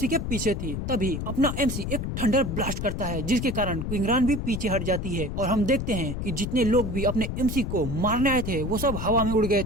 के पीछे थी। तभी अपना एमसी एक थंडर ब्लास्ट करता है, जिसके कारण क्विंगरान भी पीछे हट जाती है और हम देखते हैं कि जितने लोग भी अपने एमसी को मारने आए थे वो सब हवा में उड़ गए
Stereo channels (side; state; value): left; noise; rumble, 4 dB below the sound